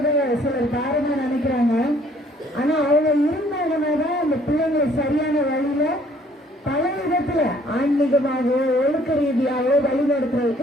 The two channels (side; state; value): both; normal; correlation 0.60